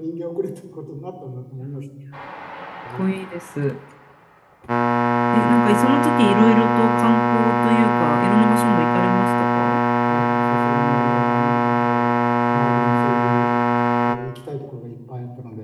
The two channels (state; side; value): identical; both; correlation 1.00